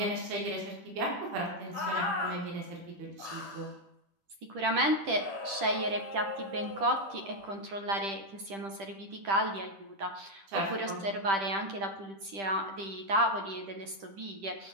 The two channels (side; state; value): left; late; 10 ms